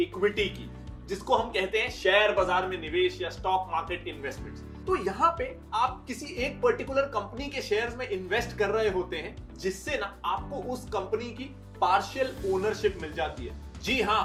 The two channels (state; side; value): identical; both; correlation 1.00